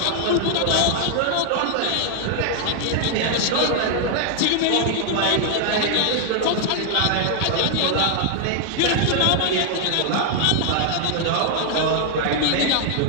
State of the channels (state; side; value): different; both; correlation 0.00